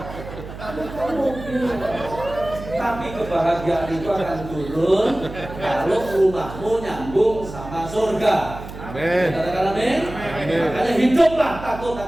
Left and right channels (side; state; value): right; noise; hum, 12 dB below the sound